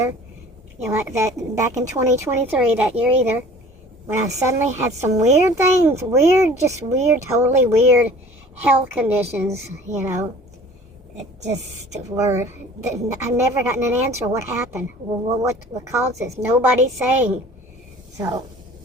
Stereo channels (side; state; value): both; normal; correlation 0.47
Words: Like that back in 2023, that year either, when I suddenly had some weird things, totally weird health conditions, it just were, I've never gotten an answer. What happened? What caused this? Nobody's saying. So,